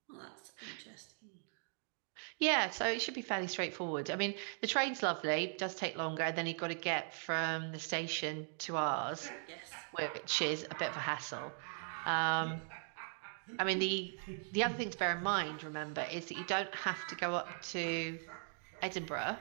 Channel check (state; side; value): silent; left; 52 dB below the other